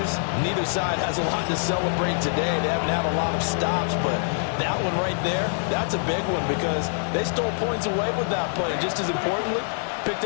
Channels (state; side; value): silent; right; digital silence